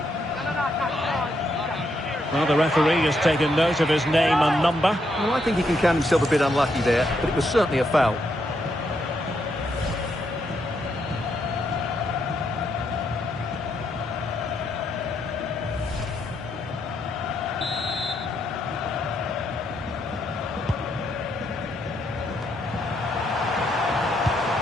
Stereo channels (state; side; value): normal; both; correlation 0.78